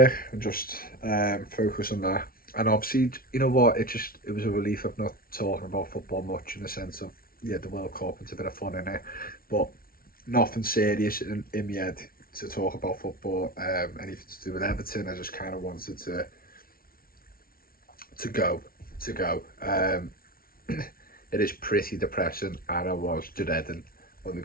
and just focus on that. And obviously, you know what, it was a relief of not talking about football much, in the sense of, yeah, the World Cup, it's a bit of fun in it, but nothing serious in my head to talk about football, anything to do with Everton. I just kind of wanted to go. It is pretty depressing, and I was dreading when we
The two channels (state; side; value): late; right; 0.43 ms